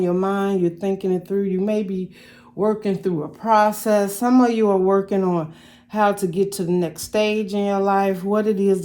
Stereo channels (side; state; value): both; identical; correlation 1.00